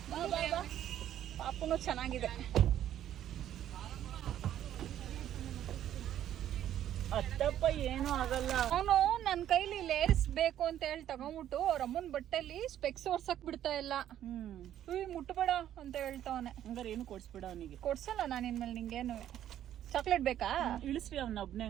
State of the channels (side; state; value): left; quieter; 11.3 dB